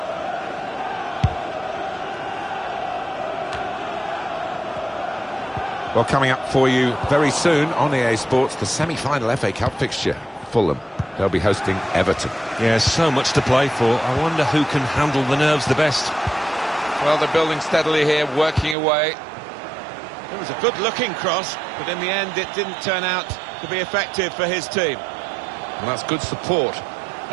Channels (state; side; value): drops out; left; at 18.8 s